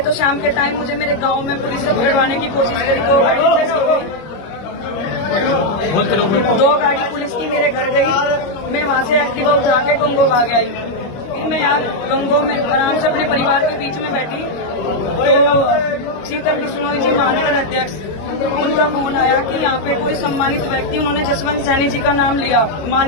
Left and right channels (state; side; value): late; right; 25 ms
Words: शाम के टाइम मुझे मेरे गांव में पुलिस से पकड़वाने की कोशिश करी। 2 गाड़ी पुलिस की मेरे घर गई। मैं वहां से एक्टिवा उठा के गंगो भाग आई। फिर मैं यहाँ गंगो में आराम से अपने परिवार के बीच में बैठी तो शीतल बिश्नोई जी, महानगर अध्यक्ष, उनका फोन आया कि यहाँ पे कोई सम्मानित व्यक्ति, उन्होंने जसवंत सैनी जी का नाम लिया,